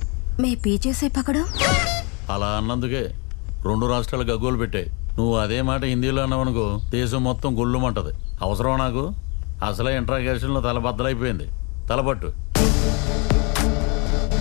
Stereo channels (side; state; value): right; quieter; 32.0 dB